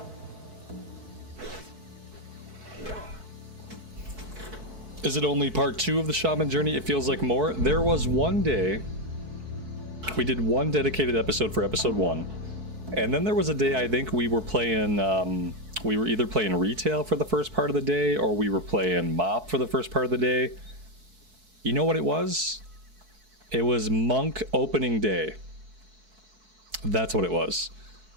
Is it only part 2 of the shaman journey? It feels like more. There was one day we did one dedicated episode for episode 1, and then there was a day I think we were playing we were either playing retail for the first part of the day, or we were playing mop for the first part of the day. You know what it was? It was monk opening day. That's what it was.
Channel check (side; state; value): left; late; 4.6 ms